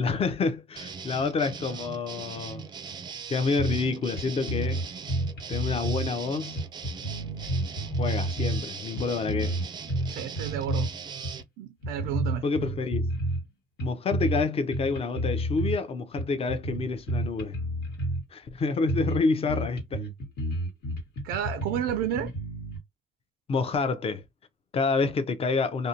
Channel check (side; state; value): both; normal; correlation 0.51